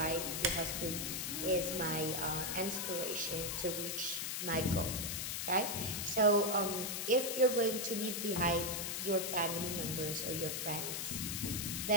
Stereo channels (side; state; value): left; noise; hiss, 2 dB below the sound